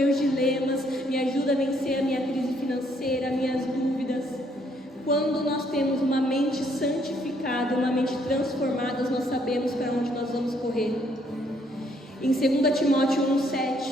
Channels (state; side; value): normal; both; correlation 0.68